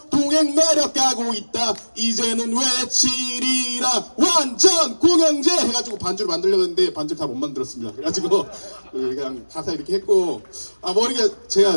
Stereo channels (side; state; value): both; inverted; correlation -1.00